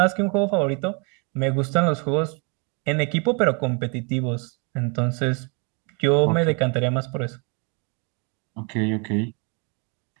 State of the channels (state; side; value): quieter; left; 34.0 dB